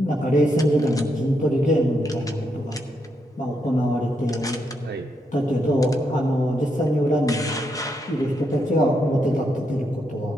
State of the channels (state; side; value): normal; both; correlation 0.80